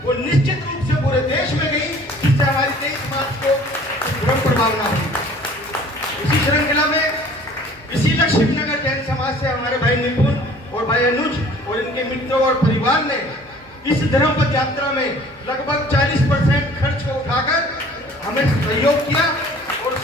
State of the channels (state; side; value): normal; both; correlation 0.51